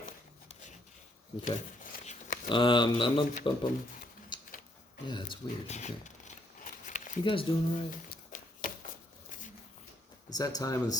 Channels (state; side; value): normal; both; correlation 0.71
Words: Okay. Yeah, it's weird. Okay. You guys doing all right? It's that time of the